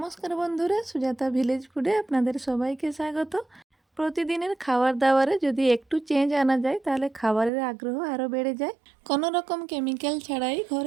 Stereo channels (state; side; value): drops out; left; at 7.5 s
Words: বন্ধুরা, সুজাতা ভিলেজ ফুডে আপনাদের সবাইকে স্বাগত। প্রতিদিনের খাবার দাবারে যদি একটু চেঞ্জ আনা যায় তাহলে খাবারের আগ্রহ আরও বেড়ে যায়। কোনো রকম কেমিক্যাল ছাড়াই